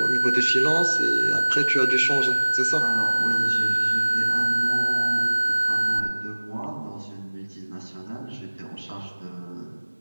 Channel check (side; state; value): both; inverted; correlation -1.00